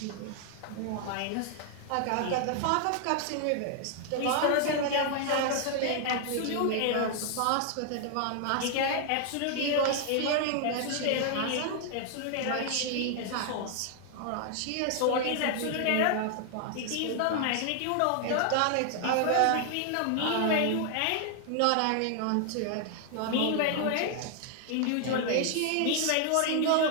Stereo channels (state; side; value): different; both; correlation 0.00